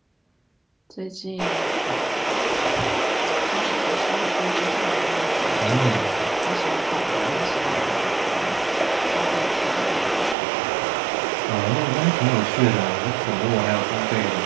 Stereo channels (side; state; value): left; drops out; at 10.4 s